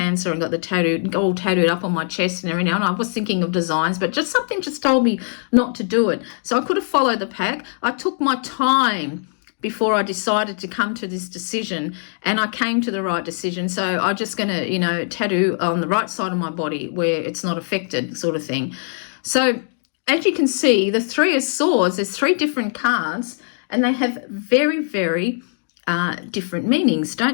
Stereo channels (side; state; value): right; silent; digital silence